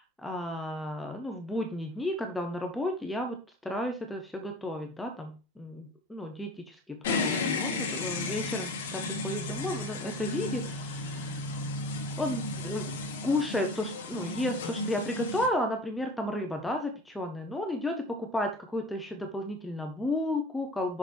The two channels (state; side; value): normal; both; correlation 0.40